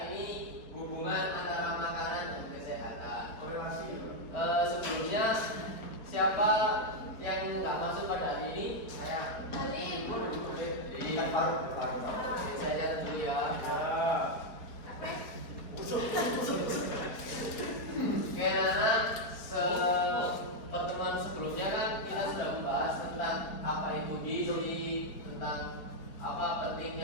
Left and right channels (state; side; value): late; right; 4.4 ms